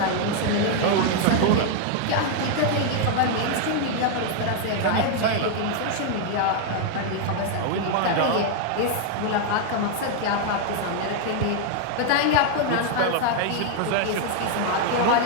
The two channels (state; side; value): different; both; correlation 0.00